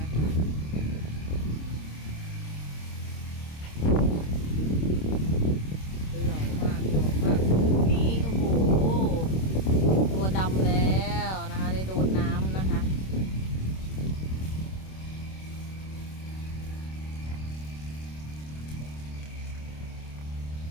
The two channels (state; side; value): late; right; 26 ms